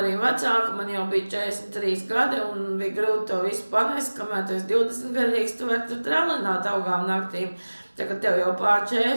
vecāka, man jau bija 43 gadi un bija grūti to visu panest, kamēr tu esi 20 gadīgs, tu vari tur tralināt augām naktīm. Tā, kad tev jau pār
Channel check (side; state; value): both; inverted; correlation -1.00